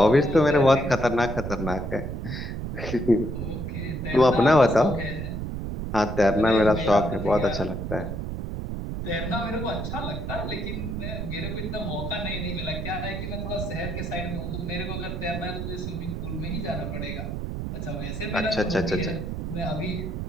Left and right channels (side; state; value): right; noise; rumble, 4 dB below the sound